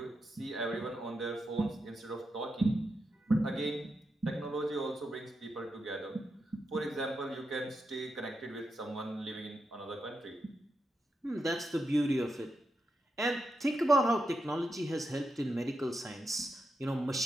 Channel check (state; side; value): normal; both; correlation 0.85